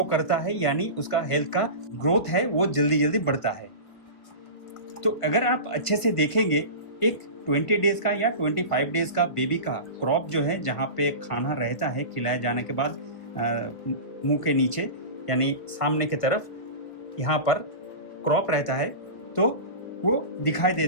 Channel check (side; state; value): right; late; 1.5 ms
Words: करता है, यानी उसका हेल्थ का ग्रोथ है वो जल्दी जल्दी बढ़ता है। तो अगर आप अच्छे से देखेंगे, एक 20 डेज का या 25 डेज का बेबी का क्रॉप जो है, जहाँ पे खाना रहता है खिलाए जाने के बाद मुंह के नीचे यानी सामने की तरफ यहाँ पर क्रॉप रहता है, तो वो दिखाई